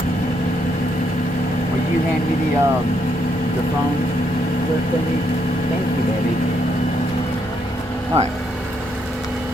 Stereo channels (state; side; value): normal; both; correlation 0.75